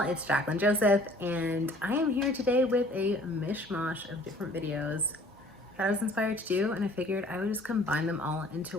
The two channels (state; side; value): normal; both; correlation 0.54